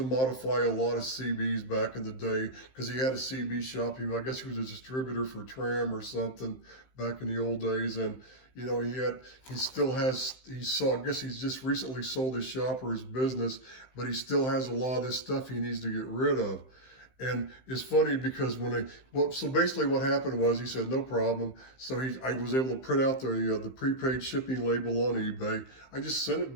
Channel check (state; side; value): late; right; 15 ms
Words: modify a lot of CBs back in the day because he had a CB shop. I guess he was a distributor for Tram or something back in the old days. And, you know, I guess he's just recently sold his shop or his business, but he still has a lot of this stuff he needs to get rid of. And it's funny because so basically what happened was he said, no problem. So I was able to print out the prepaid shipping label on eBay. I just sent it